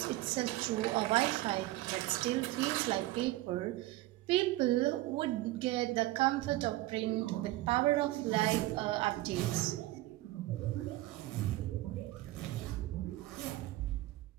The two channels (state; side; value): quieter; left; 17.4 dB